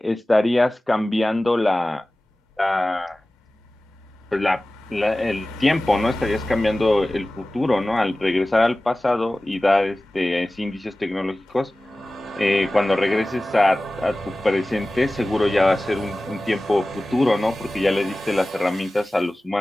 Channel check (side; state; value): both; normal; correlation 0.97